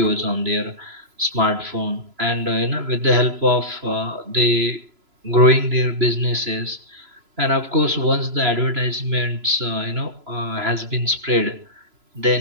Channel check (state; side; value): late; left; 3.0 ms